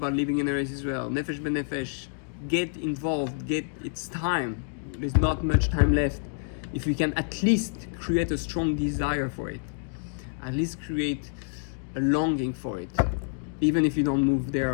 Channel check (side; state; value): right; silent; digital silence